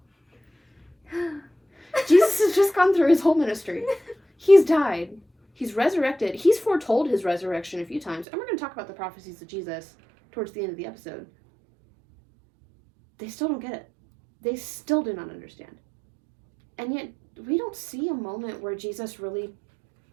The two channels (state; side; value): drops out; left; at 8.2 s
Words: Jesus has just gone through his whole ministry. He's died. He's resurrected. He's foretold his resurrection a few times. And we're going to talk about the prophecies of Jesus towards the end of the episode. They still don't get it. They still do not understand. And yet, we don't see a moment where Jesus really